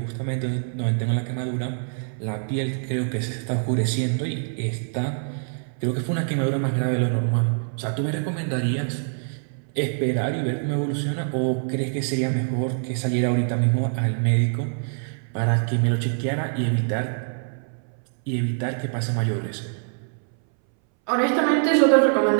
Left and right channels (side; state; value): left; silent; 62 dB below the other